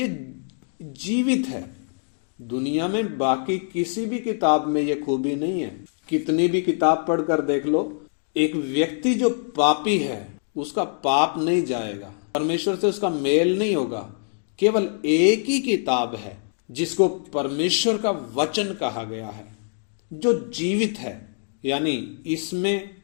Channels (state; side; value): silent; right; digital silence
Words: जीवित है। दुनिया में बाकी किसी भी किताब में ये खूबी नहीं है। कितनी भी किताब पढ़कर देख लो, एक व्यक्ति जो पापी है उसका पाप नहीं जाएगा, परमेश्वर से उसका मेल नहीं होगा। केवल एक ही किताब है जिसको परमेश्वर का वचन कहा गया है, जो जीवित है, यानी इसमें